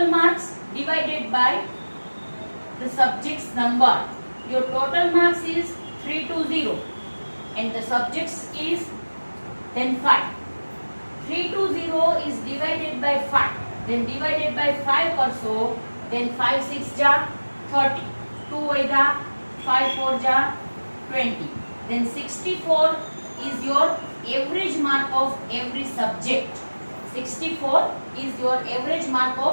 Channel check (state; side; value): inverted; both; correlation -1.00